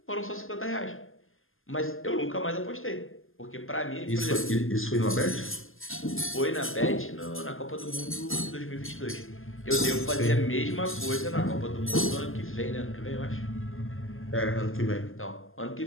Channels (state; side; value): late; right; 0.59 ms